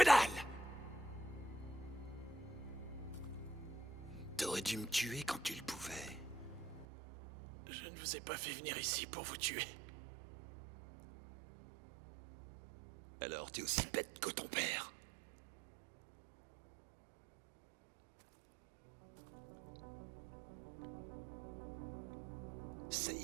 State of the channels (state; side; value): drops out; left; at 6.9 s